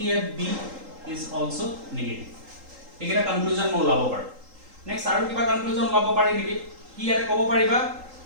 at b is also negative एकेटा conclusion মই ওলাব পাৰো next আৰু কিবা conclusion ওলাব পাৰি নেকি কি ইয়াতে ক'ব পাৰিবা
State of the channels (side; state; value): left; late; 3.8 ms